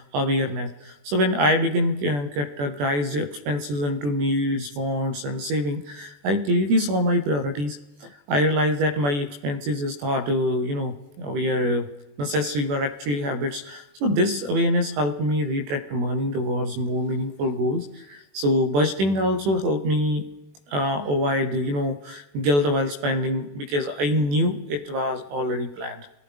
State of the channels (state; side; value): late; left; 21 ms